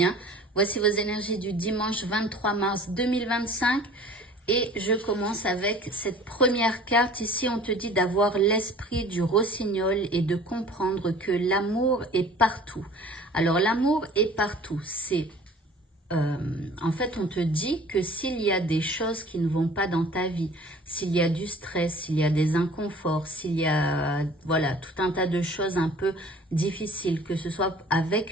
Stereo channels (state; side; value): normal; both; correlation 0.48